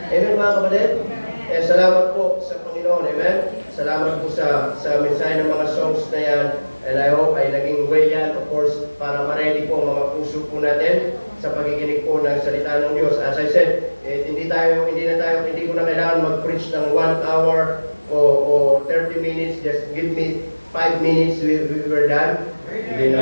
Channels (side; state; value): both; inverted; correlation -1.00